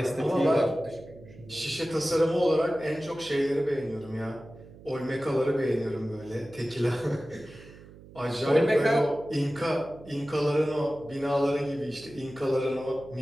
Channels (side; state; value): right; noise; hum, 20 dB below the sound